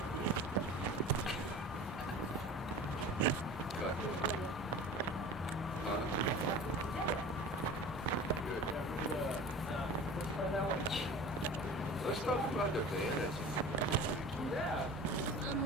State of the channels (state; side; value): normal; both; correlation 0.38